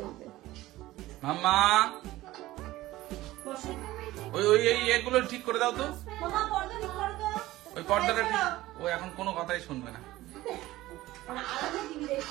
মাম্মা ওই এগুলো ঠিক করে দাও তো। মামা পর্দা ঠিক করো তো। ওই পর্দাটা ঠিক, ও এখন কোনো কথাই শুনবে না। আলাদা টিভি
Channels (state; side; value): quieter; left; 16.9 dB